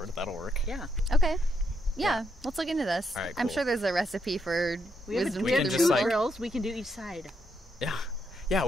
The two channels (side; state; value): both; normal; correlation 0.79